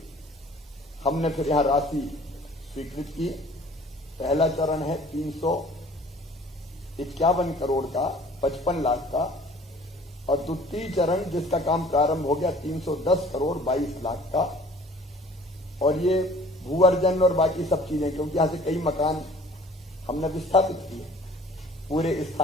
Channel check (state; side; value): normal; both; correlation 0.51